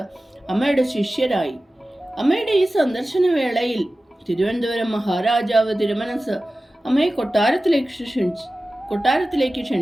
അമ്മയുടെ ശിഷ്യരായി. അമ്മയുടെ ഈ സന്ദർശന വേളയിൽ തിരുവനന്തപുരം മഹാരാജാവ് തിരുമനസ് അമ്മയെ കൊട്ടാരത്തിലേക്ക്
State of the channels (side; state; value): both; normal; correlation 0.95